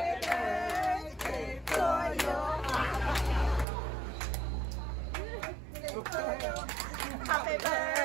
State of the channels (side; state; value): left; drops out; at 3.7 s